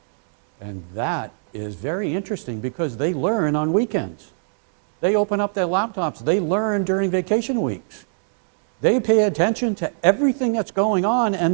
And that is very interesting because they learn on weekends. They open up their laptops. They learn during vacation weeks. They pay attention to everything that's going on,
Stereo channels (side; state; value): left; silent; digital silence